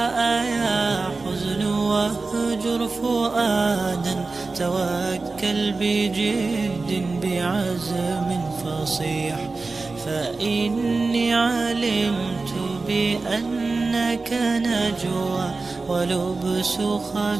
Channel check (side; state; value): left; quieter; 3.8 dB